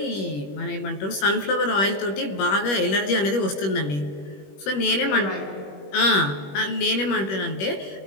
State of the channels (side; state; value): right; late; 21 ms